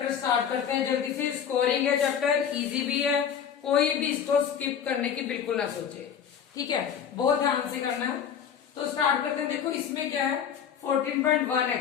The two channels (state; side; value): quieter; right; 8.1 dB